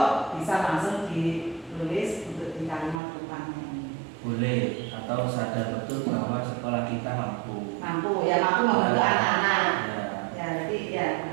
bisa langsung ditulis untuk di kalimat rumpangnya ini. boleh, atau sadar betul bahwa sekolah kita mampu Mampu membantu anak-anak. Ya, jadi ya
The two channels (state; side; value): drops out; left; at 3.0 s